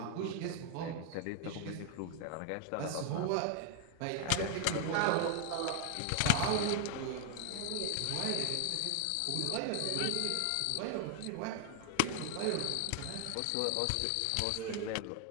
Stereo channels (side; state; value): both; different; correlation 0.00